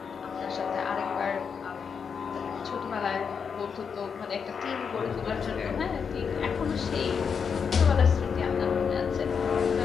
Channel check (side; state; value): right; quieter; 6.3 dB